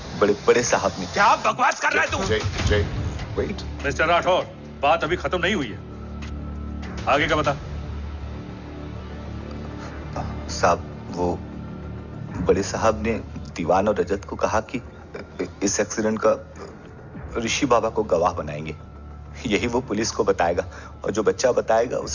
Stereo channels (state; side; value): identical; both; correlation 1.00